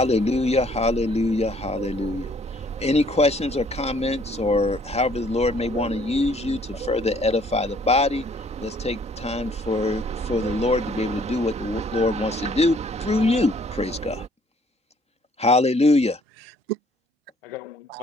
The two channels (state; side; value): normal; both; correlation 0.61